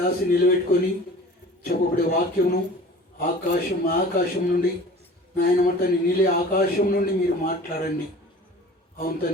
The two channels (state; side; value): normal; both; correlation 0.43